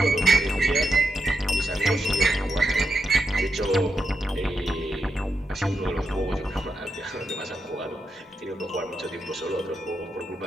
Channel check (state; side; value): normal; both; correlation 0.86